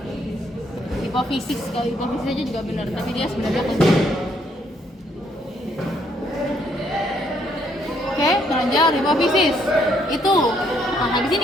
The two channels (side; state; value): both; normal; correlation 0.70